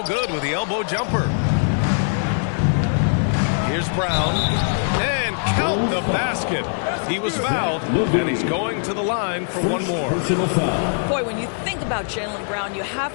good with the elbow jumper. Here's Brown. And count the basket. He was fouled, and he's going to the line for one more. Boy, when you think about Jaylen Brown, you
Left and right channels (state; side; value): silent; right; digital silence